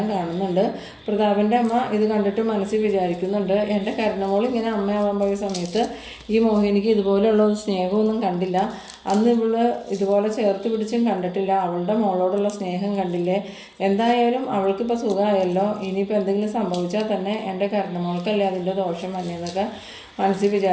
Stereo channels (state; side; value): identical; both; correlation 1.00